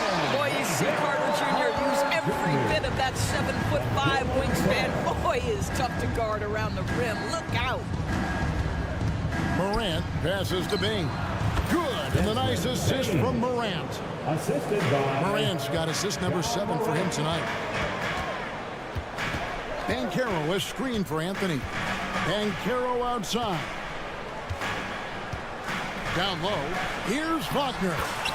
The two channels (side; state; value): both; identical; correlation 1.00